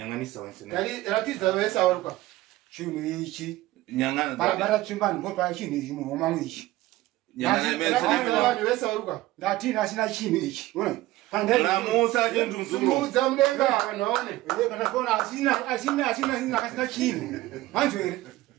wansena. Dali ratiza wesa waruka. Chino ichi. Nyangana. Bara tsimbani ngopa chino ichi muhoma mwichi. Nyangana Ratiza wesa waruka. Ndatina sina chino ichi. Unaona? Ramusa chendu mzuro. Sumudza mudenga vanoone. Kana kona asina kasina chino. Manzwere.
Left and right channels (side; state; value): left; quieter; 17.1 dB